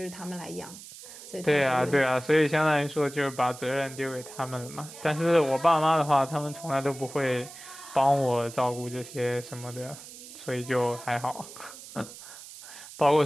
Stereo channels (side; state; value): right; noise; hiss, 15 dB below the sound